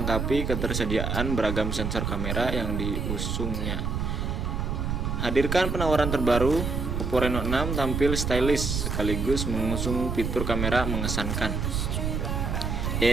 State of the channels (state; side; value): noise; right; rumble, 1 dB below the sound